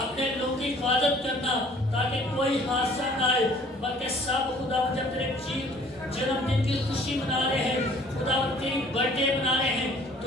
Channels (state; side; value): normal; both; correlation 0.54